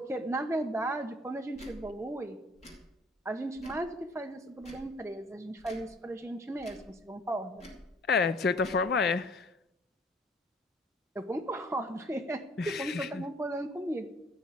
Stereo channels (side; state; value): both; normal; correlation 0.56